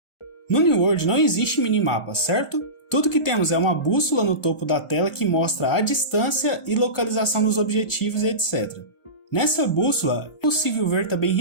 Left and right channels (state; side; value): late; right; 1.4 ms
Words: No New World não existe minimapa, certo? Tudo que temos é uma bússola no topo da tela que mostra a distância e localização dos objetivos e etc. Nessa bússola é possível ver também